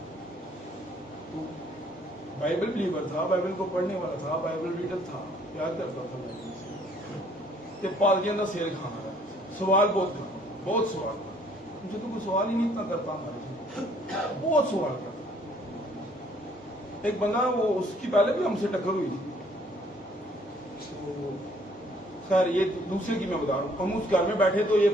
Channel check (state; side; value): normal; both; correlation 0.62